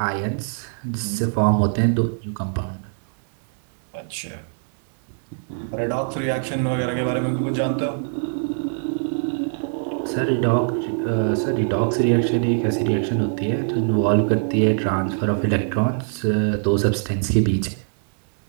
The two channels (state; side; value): silent; left; 64 dB below the other